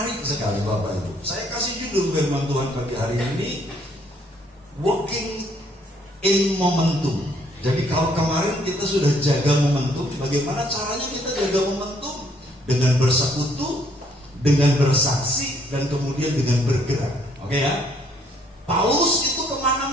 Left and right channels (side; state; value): both; normal; correlation 0.66